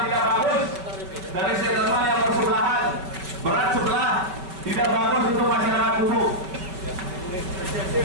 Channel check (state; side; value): late; left; 5.3 ms